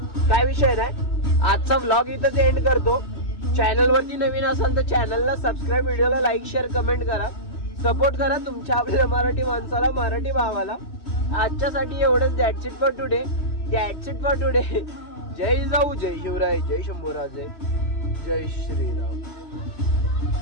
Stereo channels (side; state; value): right; late; 2.7 ms